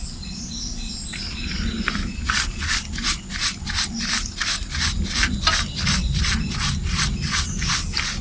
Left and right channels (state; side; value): identical; both; correlation 1.00